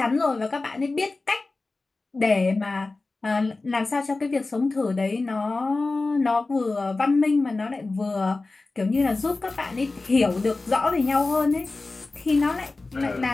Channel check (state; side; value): quieter; right; 3.4 dB